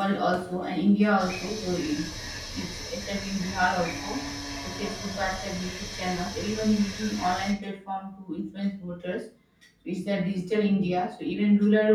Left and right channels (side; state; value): both; identical; correlation 1.00